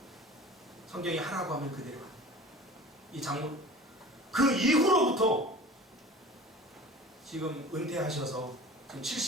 성경이 하라고 하면 그대로 하는 거예요. 이 장모 그 이후로부터 지금 은퇴하셔서 지금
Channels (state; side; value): normal; both; correlation 0.41